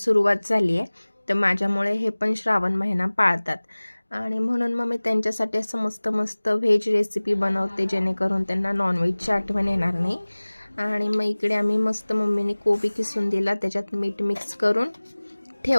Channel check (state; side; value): inverted; both; correlation -1.00